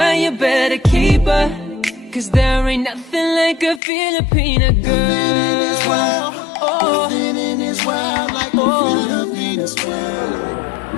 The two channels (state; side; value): drops out; right; at 3.8 s